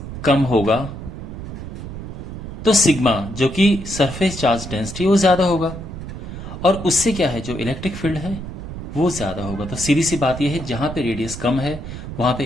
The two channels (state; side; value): noise; right; rumble, 9 dB below the sound